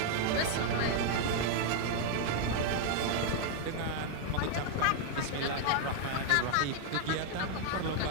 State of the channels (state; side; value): different; both; correlation 0.00